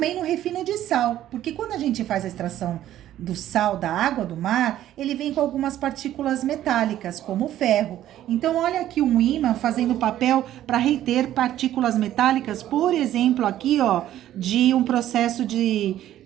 no refino de sal, porque quando a gente faz a extração do sal da água do mar, ele vem com algumas partículas metálicas, como o ferro. Então, olha aqui um ímã fazendo papel para reter partículas metálicas, por exemplo, aqui, ó, de um processo de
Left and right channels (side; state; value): left; quieter; 12.6 dB